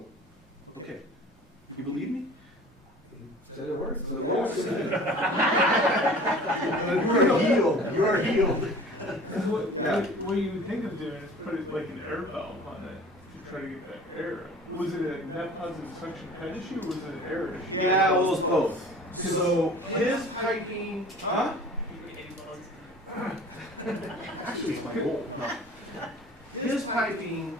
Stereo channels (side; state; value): both; normal; correlation 0.44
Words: okay. You believe me? Said it works. So You are healed. You are healed. What you would think of doing is put it like an air valve on it to try to get that air. Was it a net positive suction head issue or was it an air issue? Yeah, well, it's both. So his piping, huh? Actually, it's my goal. No. His piping